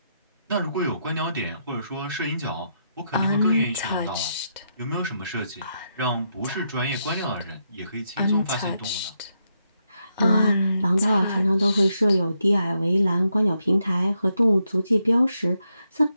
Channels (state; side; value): inverted; both; correlation -0.81